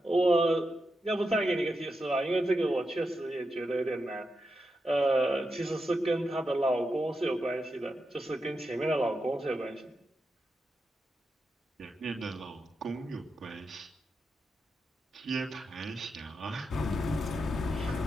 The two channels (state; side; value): normal; both; correlation 0.87